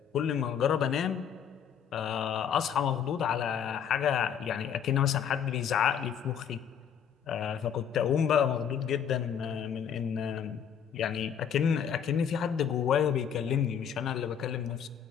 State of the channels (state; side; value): quieter; right; 8.2 dB